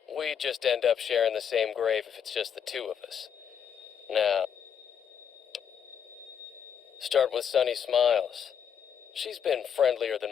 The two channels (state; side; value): quieter; right; 8.0 dB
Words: We'd just end up sharing the same grave if it's just the two of us. Now, start with Sunny Smiles. She's been friendlier